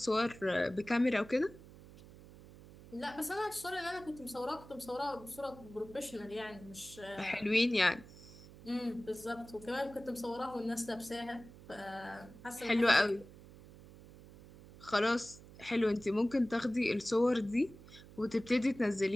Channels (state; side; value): noise; right; hum, 19 dB below the sound